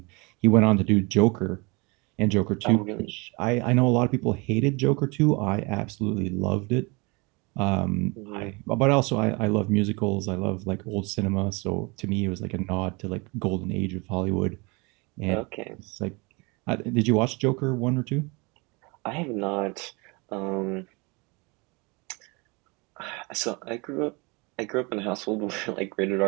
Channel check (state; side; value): quieter; left; 27.9 dB